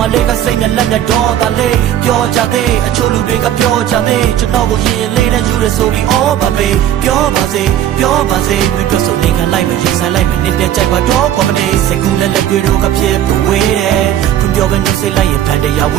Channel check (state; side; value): quieter; left; 11.3 dB